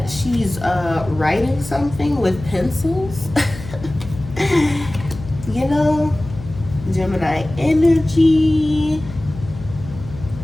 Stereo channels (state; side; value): noise; left; hum, 13 dB below the sound